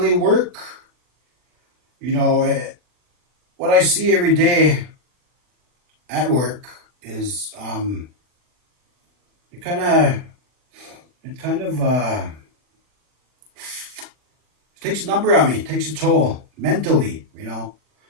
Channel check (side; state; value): left; late; 40 ms